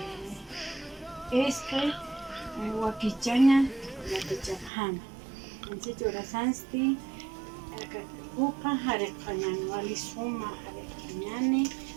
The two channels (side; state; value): left; drops out; at 4.7 s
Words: Wakichaña yatachajana. Anchicho rasansti upa hareqañani walisuma hareqañani